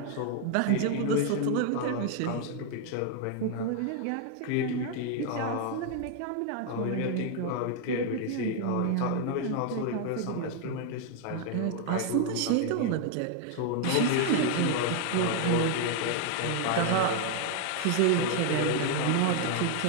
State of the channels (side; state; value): both; different; correlation 0.00